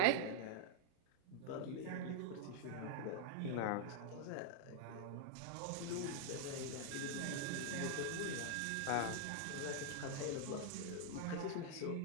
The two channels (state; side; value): different; both; correlation -0.01